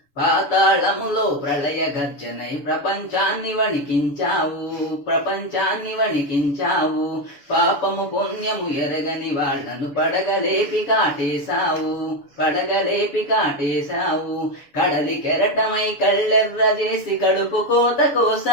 పాతాళములో ప్రళయ గర్జనై ప్రపంచాన్ని వణికించావు. పాపము పుణ్యము ఎరగని వాళ్లను పడగలేపి కాటేశావు. కడలి కెరటమై కళ్ళెర్ర చేసి కడుపు కోత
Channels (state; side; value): late; right; 6.9 ms